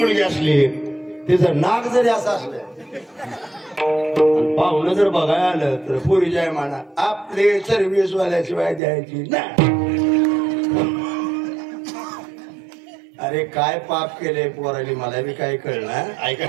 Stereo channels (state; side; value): drops out; left; at 8.8 s